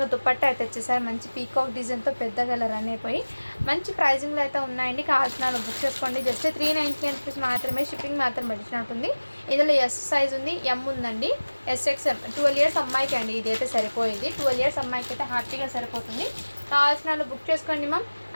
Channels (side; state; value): both; inverted; correlation -1.00